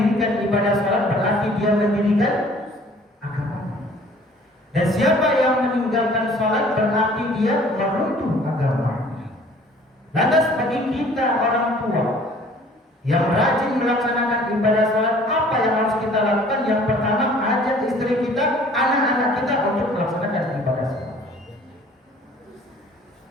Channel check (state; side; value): normal; both; correlation 0.53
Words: ibadah sholat berarti dia mendirikan agama. Dan siapa yang meninggalkan sholat berarti dia meruntuh agama. Lantas bagi kita orang tua yang rajin melaksanakan ibadah sholat, apa yang harus kita lakukan? Yang pertama, ajak istri kita, anak-anak kita untuk melaksanakan ibadah sholat.